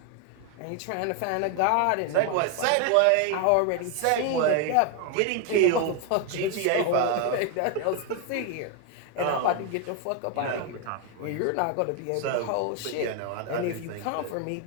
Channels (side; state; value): both; different; correlation 0.01